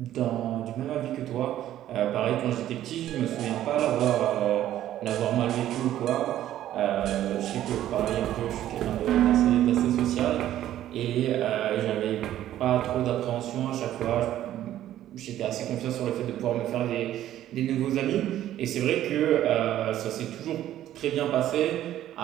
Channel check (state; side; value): quieter; left; 12.6 dB